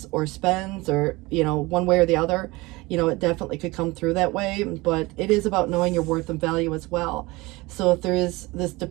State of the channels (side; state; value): left; quieter; 22.3 dB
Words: or spends, or one way or the other, it definitely could come through that way. But it is about knowing your worth and value as well. So if there is this